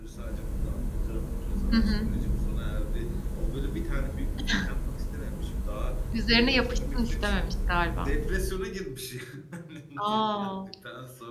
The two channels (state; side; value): identical; both; correlation 1.00